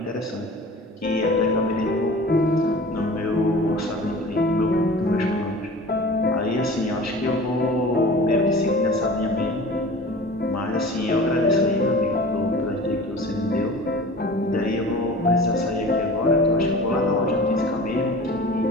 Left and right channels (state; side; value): normal; both; correlation 0.39